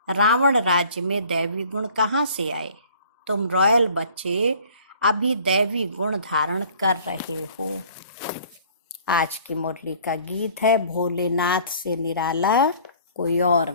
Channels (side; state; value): both; inverted; correlation -0.52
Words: रावण राज्य में दैवी गुण कहाँ से आए? तुम रॉयल बच्चे अभी दैवी गुण धारण कर रहे हो। आज की मुरली का गीत है, भोलेनाथ से निराला कोई और